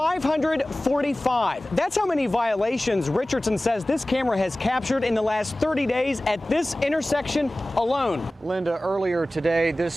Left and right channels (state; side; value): normal; both; correlation 0.97